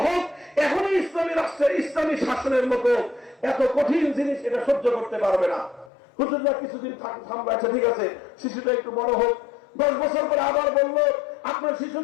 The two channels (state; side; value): drops out; right; at 5.9 s